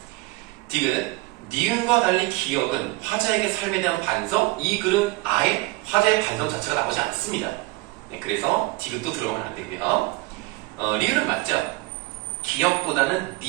디귿, 니은과 달리 기역은 화자에게 삶에 대한 반성, 이 글은 아예 화자의 반성 자체가 나오지 않습니다. 네, 그래서 디귿도 들어가면 안 되고요. 리을은 맞죠. 기역보다는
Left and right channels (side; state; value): left; quieter; 21.6 dB